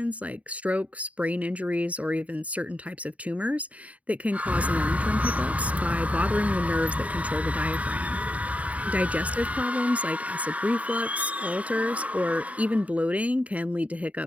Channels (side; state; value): left; late; 0.068 ms